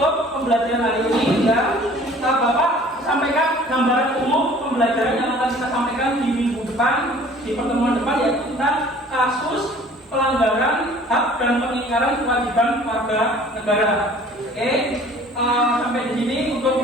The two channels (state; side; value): normal; both; correlation 0.50